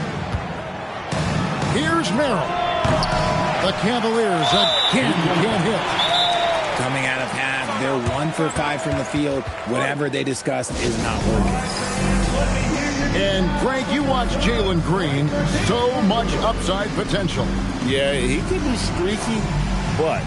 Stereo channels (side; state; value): both; identical; correlation 1.00